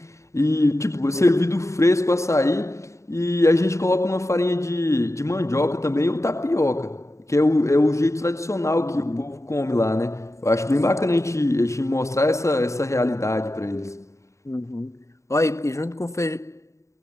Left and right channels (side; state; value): right; late; 0.14 ms